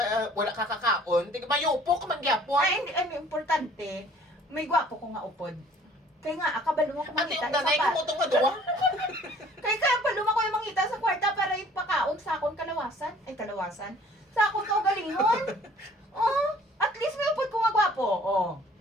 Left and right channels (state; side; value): normal; both; correlation 0.53